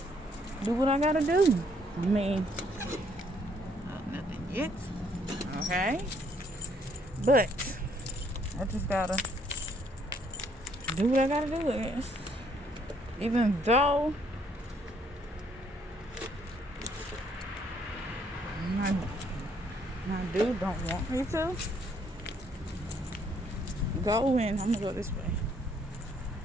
do what I gotta do. I mean, nothing yet. Okay. But I just gotta do what I gotta do, I guess. Even though my dude don't want me to go in. I'm gonna go this way.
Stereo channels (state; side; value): normal; both; correlation 0.67